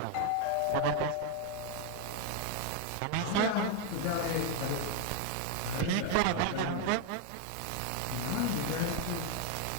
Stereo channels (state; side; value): different; both; correlation 0.01